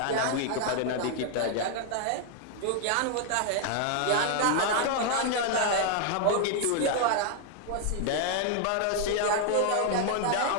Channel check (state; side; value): different; both; correlation 0.00